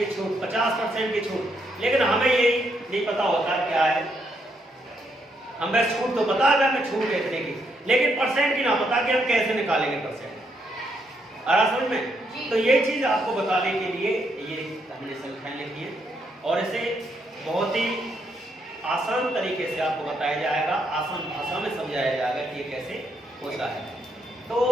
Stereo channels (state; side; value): normal; both; correlation 0.76